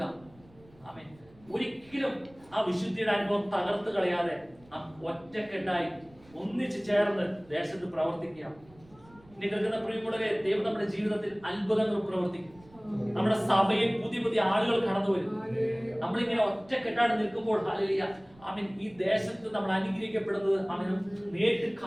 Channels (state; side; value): noise; right; rumble, 27 dB below the sound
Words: ആമേൻ. ഒരിക്കലും ആ വിശുദ്ധിയുടെ അനുഭവം തകർത്ത് കളയാതെ ആ ഒറ്റക്കെട്ടായി ഒന്നിച്ച് ചേർന്ന് ദേശത്ത് പ്രവർത്തിക്കാം. ഇനി കേൾക്കുന്ന പ്രിയമുള്ളവരെ, ദൈവം നമ്മുടെ ജീവിതത്തിൽ അത്ഭുതങ്ങൾ പ്രവർത്തിക്കും. നമ്മുടെ സഭയിൽ പുതിയ പുതിയ ആളുകൾ കടന്നു വരും. നമ്മളിങ്ങനെ ഒറ്റക്കെട്ടാണ് നിൽക്കുമ്പോൾ ഹല്ലേലൂയ, ആമേൻ, ഈ ദേശത്ത് നമ്മൾ അനുഗ്രഹിക്കപ്പെടുന്നത് ആമേൻ നേരിട്ട്